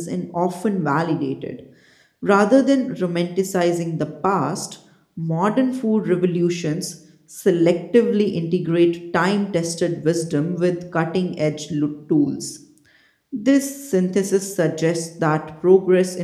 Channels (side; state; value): both; identical; correlation 1.00